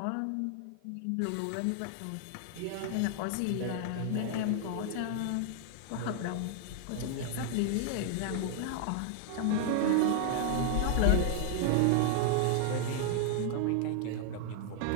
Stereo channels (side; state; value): both; different; correlation 0.00